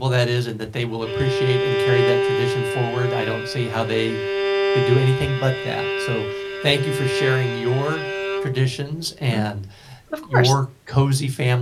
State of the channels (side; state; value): both; identical; correlation 1.00